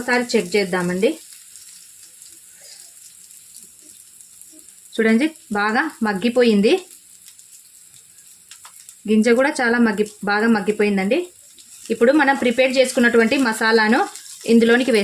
చెక్ చేద్దామండి. చూడండి, బాగా మగ్గిపోయింది. గింజ కూడా చాలా బాగా మగ్గిపోయిందండి. ఇప్పుడు మనం ప్రిపేర్ చేసుకున్నటువంటి మసాలాను ఇందులోనికి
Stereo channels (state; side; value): identical; both; correlation 1.00